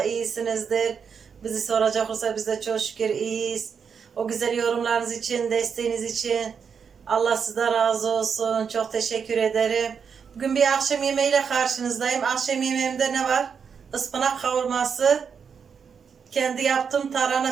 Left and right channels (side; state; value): left; quieter; 6.5 dB